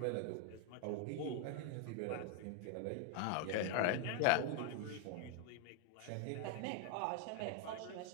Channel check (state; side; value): different; both; correlation 0.01